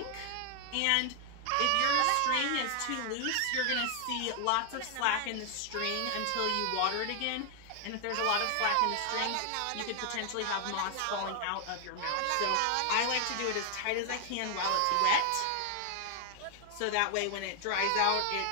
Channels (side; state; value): both; different; correlation 0.00